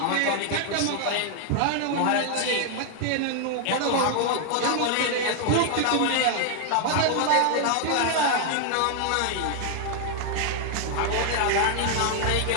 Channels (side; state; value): both; different; correlation 0.00